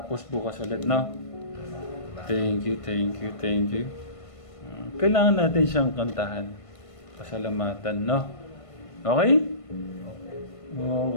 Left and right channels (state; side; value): late; right; 1.5 ms